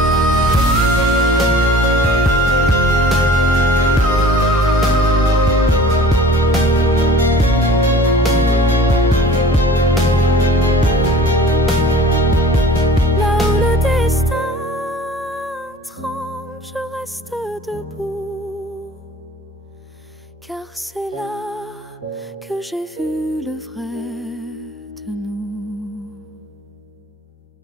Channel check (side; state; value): both; normal; correlation 0.45